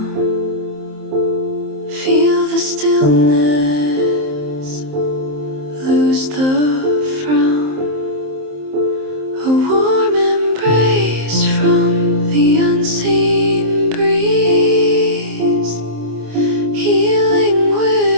Feel the stillness, lose the frown. A warm embrace from the unseen breeze, healing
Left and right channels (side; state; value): left; late; 27 ms